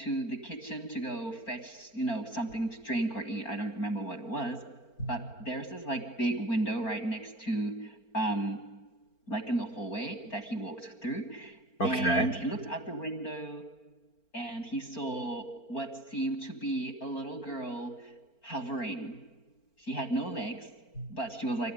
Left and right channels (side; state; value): right; late; 4.4 ms